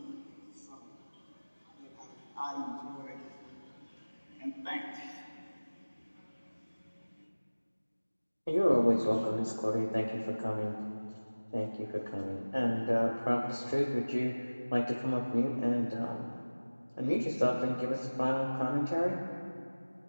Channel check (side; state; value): both; inverted; correlation -1.00